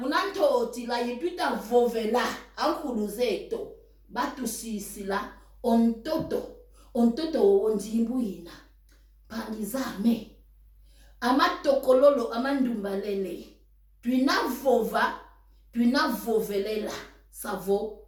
Kuna ntotila yetuita vovela ankuluzeto batu sisila. Ontoto onjimbu ina. Pangizame. Amatokololo amandumbalele. Tuina vovelela. Savo.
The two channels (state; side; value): identical; both; correlation 1.00